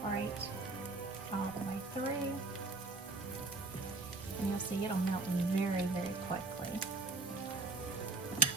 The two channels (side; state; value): left; quieter; 3.5 dB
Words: all the way through. And you'll see it'll melt very, very quickly.